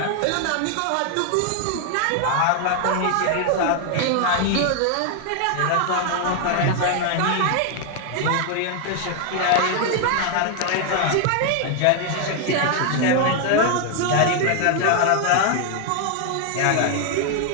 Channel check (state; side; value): different; both; correlation 0.00